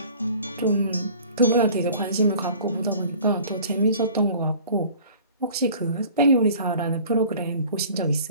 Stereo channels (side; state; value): both; inverted; correlation -0.47